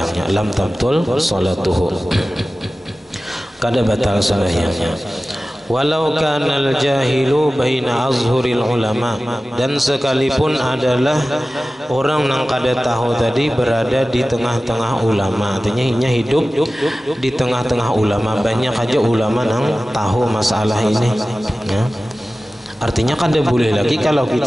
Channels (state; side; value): normal; both; correlation 0.96